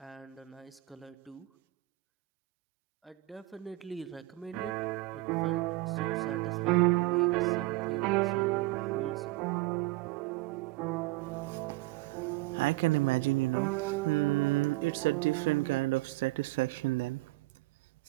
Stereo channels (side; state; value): left; quieter; 19.9 dB